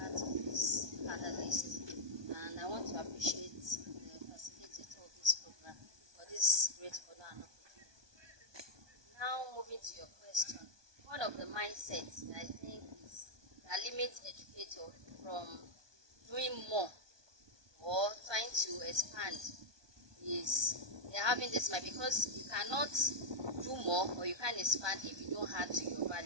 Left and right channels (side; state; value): left; late; 1.2 ms